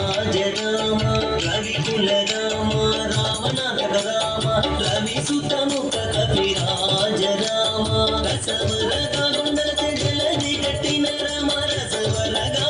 రామ రవికుల రామ రామనాంతక రామ రవి సుతముఖ కపిరాజ రామ రసవరగా కొండలతే జలది కట్టిన రామ రసవరగా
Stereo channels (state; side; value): identical; both; correlation 1.00